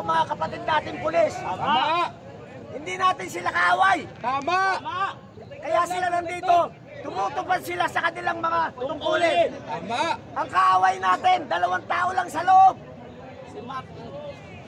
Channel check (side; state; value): both; identical; correlation 1.00